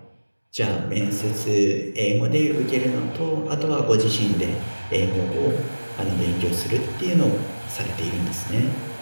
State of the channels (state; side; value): inverted; both; correlation -1.00